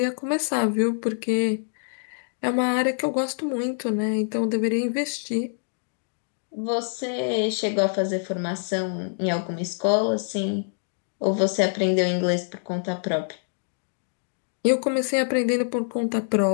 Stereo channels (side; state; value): right; silent; digital silence